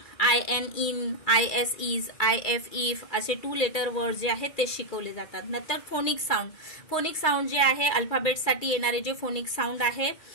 IN, IN, IS, IS, IF, IF असे 2 लेटर वर्ड जे आहेत ते शिकवले जातात। नंतर फोनिक साऊंड, फोनिक साऊंड जे आहे अल्फाबेटसाठी येणारे जे फोनिक साऊंड आहे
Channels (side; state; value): right; late; 2.2 ms